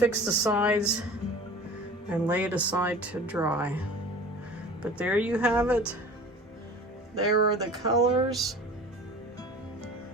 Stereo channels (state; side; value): normal; both; correlation 0.41